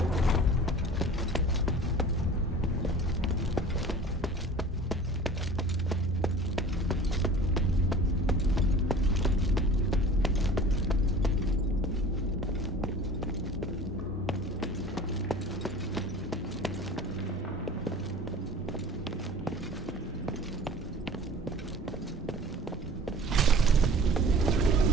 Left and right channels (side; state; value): both; normal; correlation 0.42